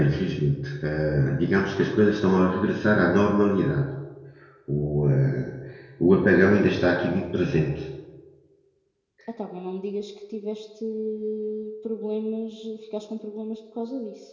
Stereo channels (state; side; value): identical; both; correlation 1.00